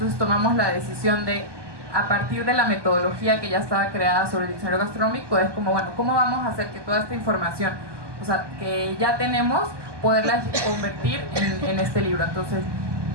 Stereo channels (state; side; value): late; left; 1.2 ms